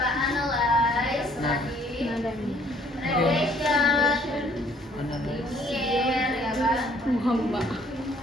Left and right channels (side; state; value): both; normal; correlation 0.61